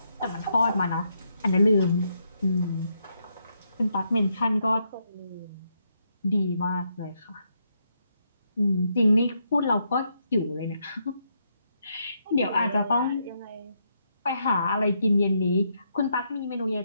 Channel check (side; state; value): both; inverted; correlation -0.78